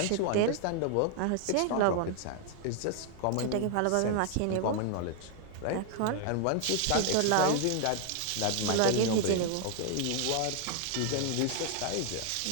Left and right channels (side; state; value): both; different; correlation 0.00